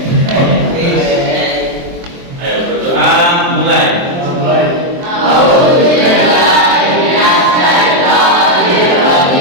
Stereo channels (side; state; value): left; late; 23 ms